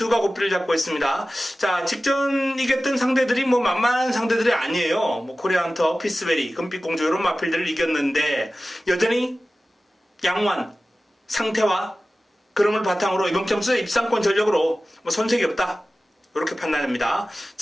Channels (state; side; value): normal; both; correlation 0.96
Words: 고삐를 잡고 있습니다. 자, 직전 이겼던 상대들이 뭐 만만한 상대들이 아니에요. 뭐 코리아헌터, 피스베리, 금빛공주 이런 마필들을 이겼는데 여전히 양완 상태와 그름을 바탕으로 이번 경주 입상권 전력으로 뭐 손색이 없다, 이렇게 판단합니다.